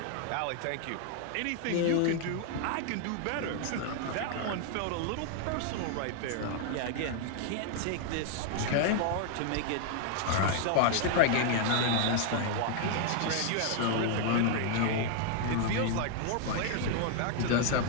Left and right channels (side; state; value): both; different; correlation 0.00